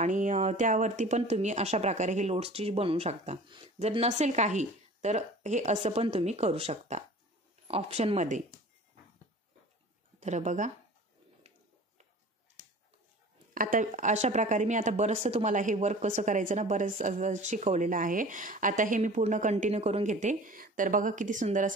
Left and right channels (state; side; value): normal; both; correlation 0.42